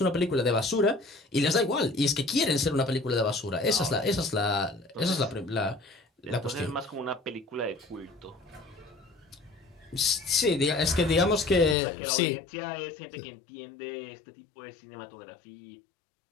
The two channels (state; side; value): drops out; right; at 11.8 s